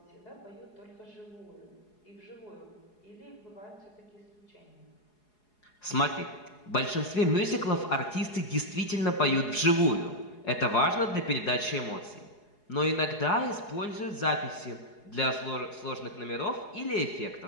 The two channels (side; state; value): right; late; 4.8 ms